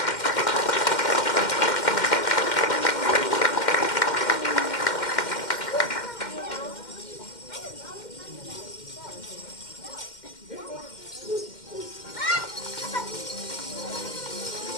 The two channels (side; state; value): right; late; 2.1 ms